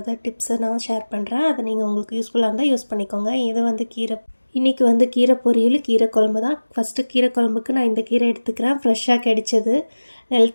டிப்ஸை நான் ஷேர் பண்ணுறேன். அதை நீங்கள் உங்களுக்கு யூஸ்ஃபுல்லாக இருந்தால் யூஸ் பண்ணிக்கோங்க. இது வந்து இன்றைக்கி வந்து கீரை பொரியல், கீரை குழம்பு தான். ஃபஸ்ட்டு கீரை குழம்புக்கு நான் இந்த கீரை எடுத்துக்கிறேன். ஃப்ரெஷ்ஷாக கிடைச்சது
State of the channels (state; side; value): inverted; both; correlation -1.00